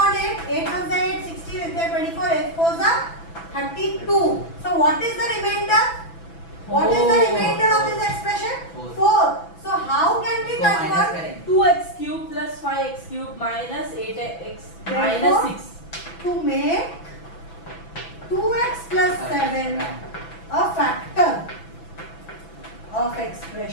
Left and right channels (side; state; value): right; late; 6.0 ms